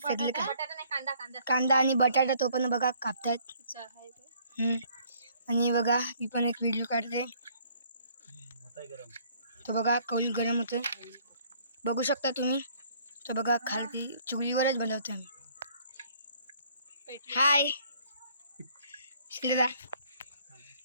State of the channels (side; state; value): both; inverted; correlation -0.60